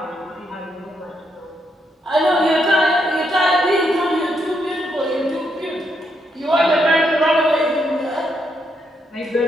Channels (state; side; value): normal; both; correlation 0.78